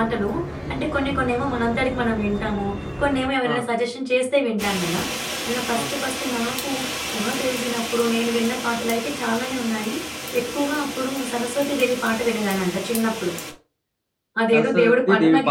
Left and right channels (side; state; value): both; identical; correlation 1.00